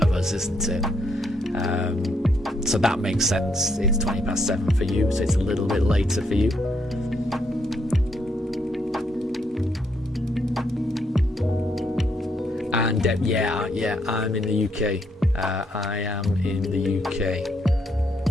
us, isn't it? So that makes sense. It's 7:20 for you, so it's a little bit later for you. And yeah, I'm in the UK. I am in the UK.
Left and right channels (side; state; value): both; normal; correlation 0.75